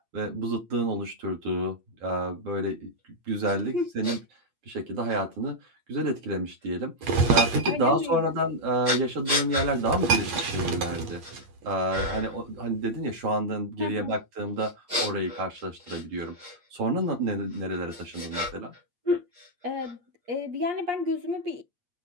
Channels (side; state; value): left; late; 8.5 ms